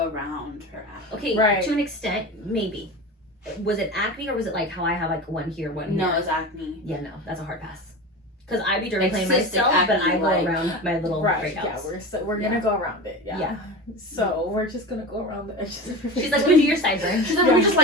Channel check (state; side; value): normal; both; correlation 0.28